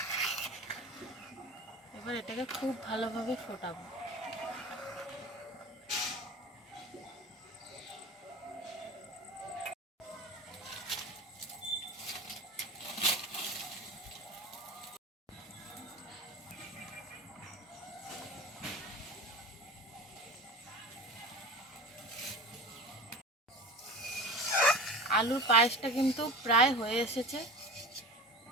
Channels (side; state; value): both; normal; correlation 0.33